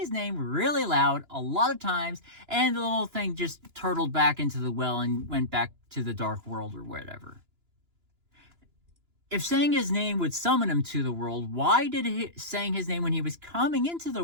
name really loud a lot of times, and the little thing just turtled back into the well and went back to the dark world or whatever. If saying his name would summon him to the world, why did saying his name when he was coming into the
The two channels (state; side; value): late; left; 2.9 ms